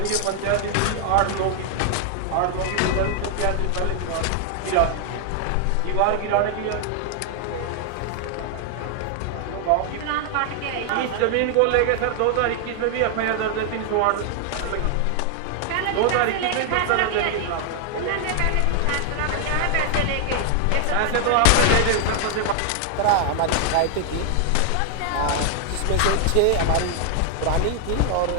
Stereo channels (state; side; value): different; both; correlation 0.00